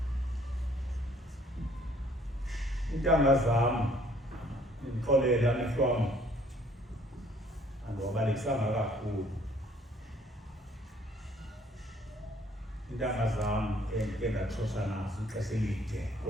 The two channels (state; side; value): normal; both; correlation 0.60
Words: intanga zam ndixolela nihlwam andiwabalekisanga kakhulu intanga zam endike ndatshosha nazo ixesha elide